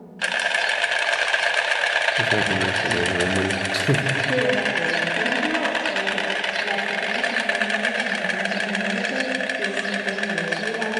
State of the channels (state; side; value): identical; both; correlation 1.00